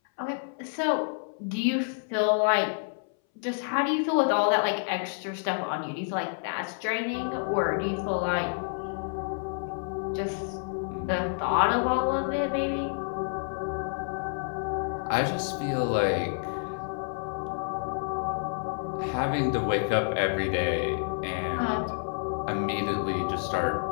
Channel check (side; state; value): right; silent; 59 dB below the other